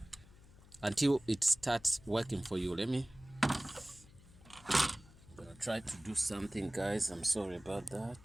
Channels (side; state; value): left; noise; hum, 22 dB below the sound